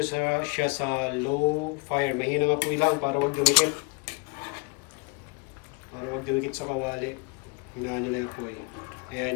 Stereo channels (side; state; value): right; quieter; 30.7 dB